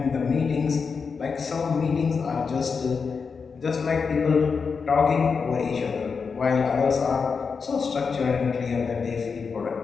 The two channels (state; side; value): quieter; right; 5.4 dB